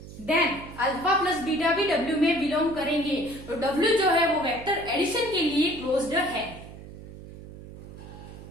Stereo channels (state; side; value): noise; right; hum, 15 dB below the sound